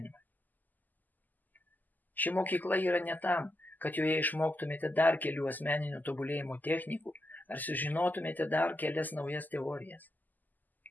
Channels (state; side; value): late; right; 0.084 ms